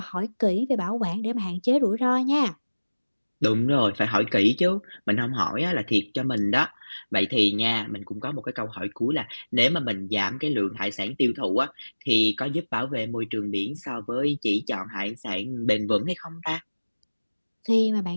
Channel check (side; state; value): both; inverted; correlation -1.00